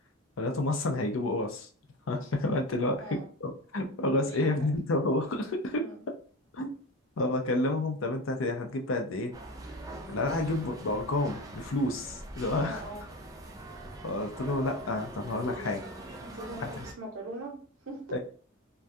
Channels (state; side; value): normal; both; correlation 0.26